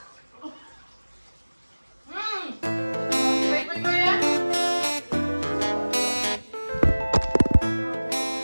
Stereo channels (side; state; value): both; inverted; correlation -1.00